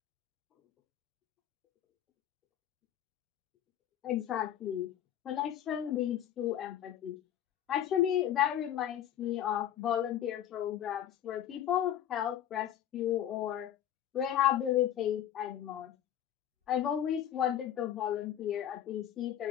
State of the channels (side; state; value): right; quieter; 10.8 dB